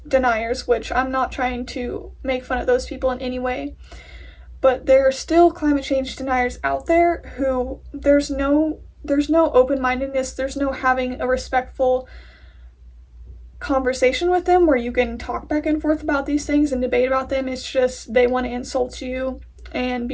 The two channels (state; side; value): identical; both; correlation 1.00